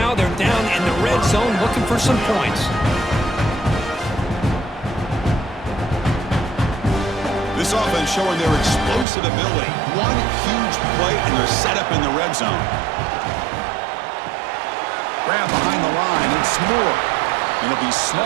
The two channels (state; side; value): drops out; left; at 9.1 s